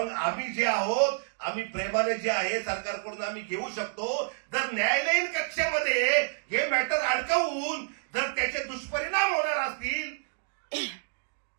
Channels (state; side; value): silent; left; digital silence